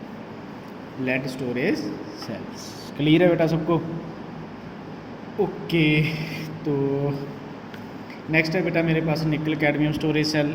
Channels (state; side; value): identical; both; correlation 1.00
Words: lead storage cells. Clear है बेटा सबको? ओके। तो नेक्स्ट है बेटा मेरे पास निकल कैडमियम स्टोरेज सेल।